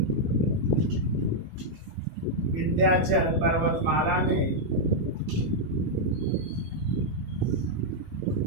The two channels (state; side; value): late; left; 18 ms